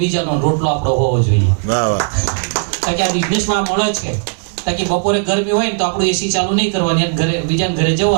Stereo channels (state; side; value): silent; left; 69 dB below the other